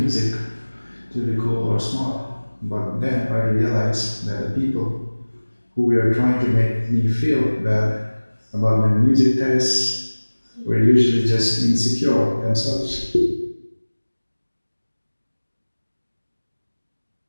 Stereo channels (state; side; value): inverted; both; correlation -1.00